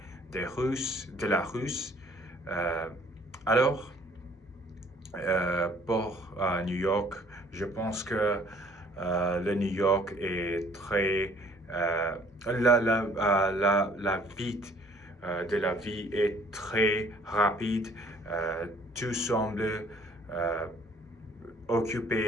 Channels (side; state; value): both; normal; correlation 0.58